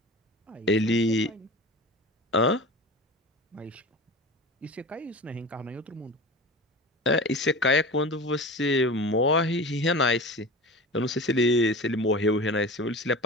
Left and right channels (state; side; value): normal; both; correlation 0.33